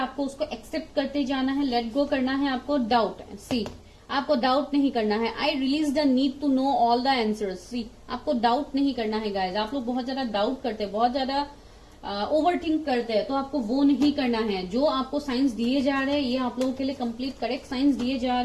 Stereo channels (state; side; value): identical; both; correlation 1.00